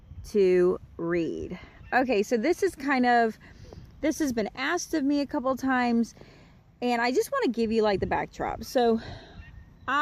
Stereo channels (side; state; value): both; identical; correlation 1.00